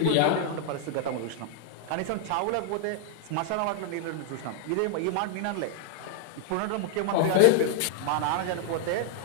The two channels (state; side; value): different; both; correlation 0.00